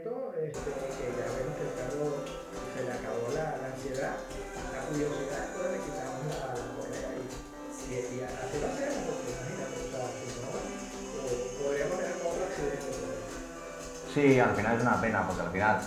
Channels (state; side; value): identical; both; correlation 1.00